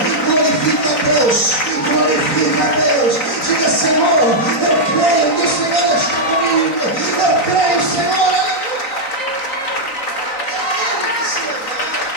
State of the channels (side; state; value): right; late; 3.9 ms